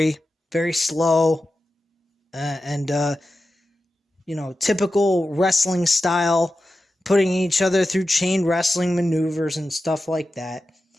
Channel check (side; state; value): both; normal; correlation 0.92